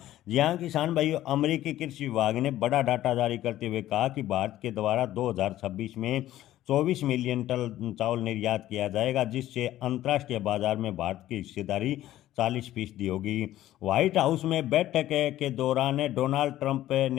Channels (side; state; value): right; quieter; 13.9 dB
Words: जी हाँ किसान भाइयों, अमेरिकी कृषि विभाग ने बड़ा डाटा जारी करते हुए कहा कि भारत के द्वारा 2026 में 24 मिलियन टन चावल निर्यात किया जाएगा, जिससे अंतर्राष्ट्रीय बाजार में भारत की हिस्सेदारी 40% होगी। व्हाइट हाउस में बैठक के दौरान डोनाल्ड ट्रंप